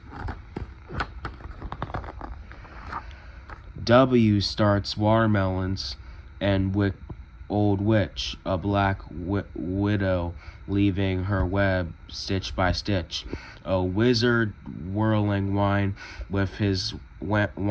W starts watermelons and old witch, a black widow leaving her web stitch by stitch. A wizard whirling wine with his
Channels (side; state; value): both; identical; correlation 1.00